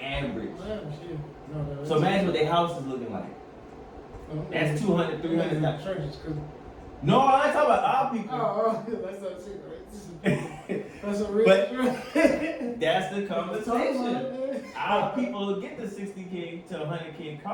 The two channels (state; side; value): identical; both; correlation 1.00